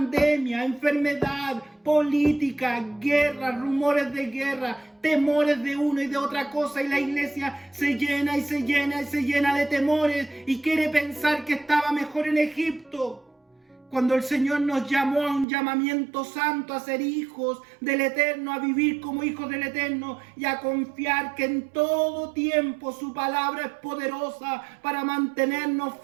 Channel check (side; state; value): left; drops out; at 15.5 s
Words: enfermedad, política, guerra, rumores de guerra, temores de uno y de otra cosa, y la iglesia se llena y se llena y se llena de temores y quiere pensar que estaba mejor en Egipto. Cuando el Señor nos llamó a un llamamiento santo, a ser hijos del Eterno, a vivir como hijos del Eterno y a confiar que en todo tiempo su palabra es poderosa para mantenernos